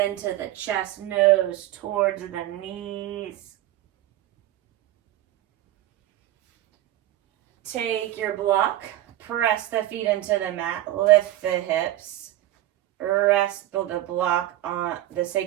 the chest, nose towards the knees. Take your block, press the feet into the mat, lift the hips, rest the block on the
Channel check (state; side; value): quieter; left; 14.4 dB